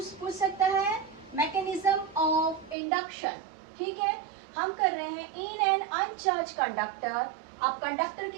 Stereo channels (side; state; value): left; drops out; at 2.8 s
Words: सकता है मैकेनिज्म ऑफ इंडक्शन। ठीक है, हम कर रहे हैं इन एन अनचार्ज कंडक्टर। आप कंडक्टर